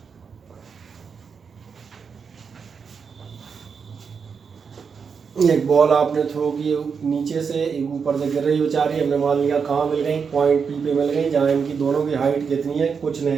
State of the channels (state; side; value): quieter; left; 6.0 dB